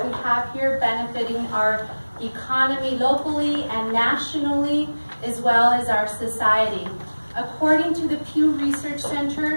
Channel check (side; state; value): both; inverted; correlation -1.00